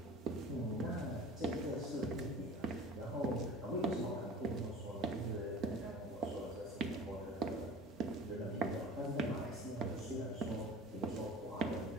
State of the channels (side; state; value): both; normal; correlation 0.40